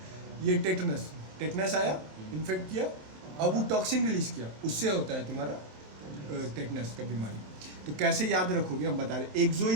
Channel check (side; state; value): left; late; 27 ms